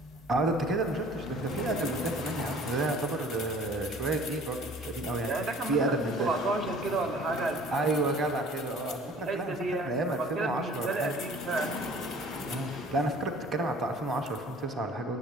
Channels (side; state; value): both; normal; correlation 0.50